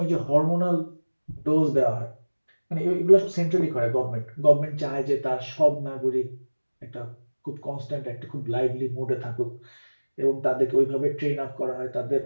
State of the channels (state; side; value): inverted; both; correlation -1.00